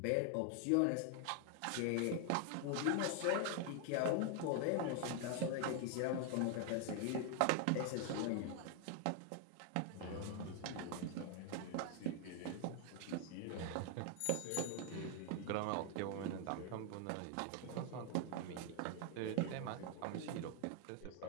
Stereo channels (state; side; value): different; both; correlation 0.00